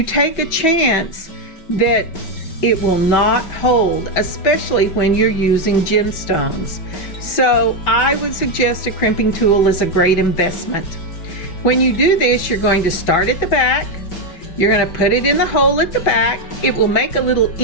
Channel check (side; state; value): right; late; 5.3 ms